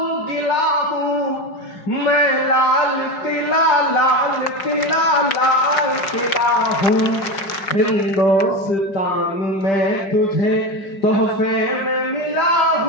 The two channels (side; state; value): right; late; 5.1 ms